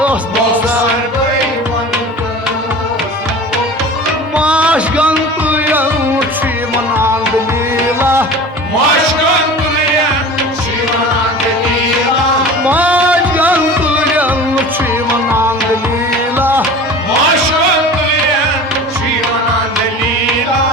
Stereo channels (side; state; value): both; normal; correlation 0.37